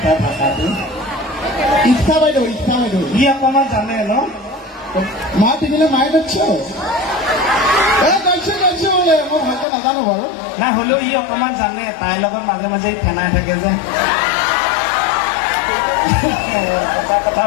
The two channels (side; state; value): right; drops out; at 9.7 s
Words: তাৰ ভাষাটো ইচ্ছা বাইদেউ ই অকণমান জানে ন মা পিন্ধিলে মায়ে যাচ্ছে যাচ্ছে বোলে মই ভালকে নাজানো বাৰু নাই হ'লেও ই অকণমান জানে তাইৰ লগত মাজে মাজে ফেনাই থাকে যে